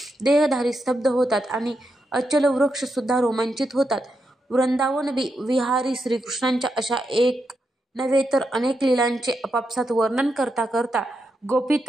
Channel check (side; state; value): both; normal; correlation 0.84